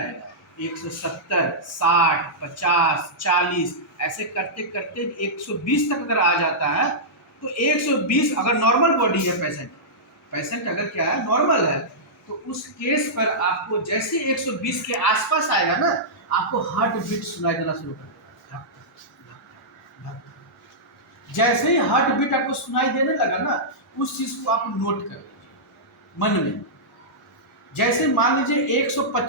170, 60, 50, 40 ऐसे करते करते 120 तक अगर आ जाता है तो 120 अगर नॉर्मल बॉडी है पेशेंट अगर क्या है नॉर्मल है तो उस केस पर आपको जैसे 120 के आसपास आएगा ना आपको हार्ट बीट सुनाई देना शुरू कर देगा। जैसे ही हार्ट बीट आपको सुनाई देने लगा ना उस चीज को आप नोट कर लीजिए मन में। जैसे मान लीजिए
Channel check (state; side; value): normal; both; correlation -0.13